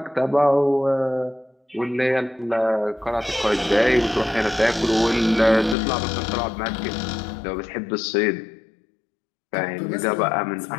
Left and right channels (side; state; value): right; drops out; at 5.8 s